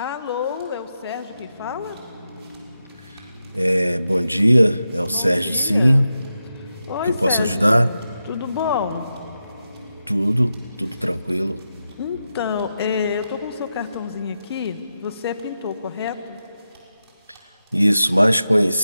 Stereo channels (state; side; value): inverted; both; correlation -0.89